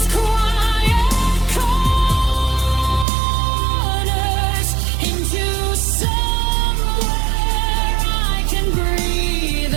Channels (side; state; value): left; drops out; at 3.1 s